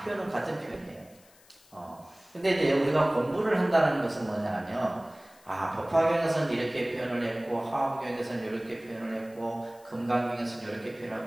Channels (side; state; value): left; noise; hiss, 27 dB below the sound